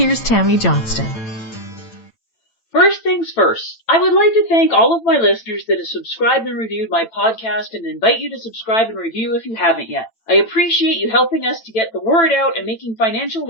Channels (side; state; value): right; late; 9.0 ms